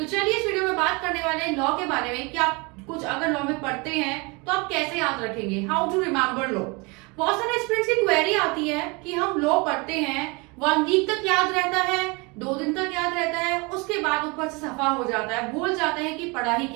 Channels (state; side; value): quieter; left; 28.1 dB